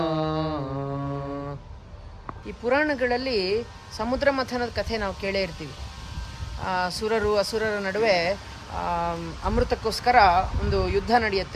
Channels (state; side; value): identical; both; correlation 1.00